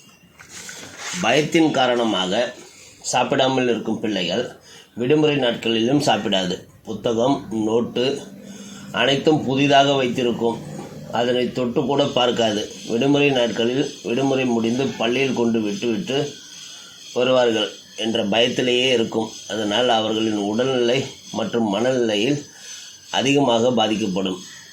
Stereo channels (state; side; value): identical; both; correlation 1.00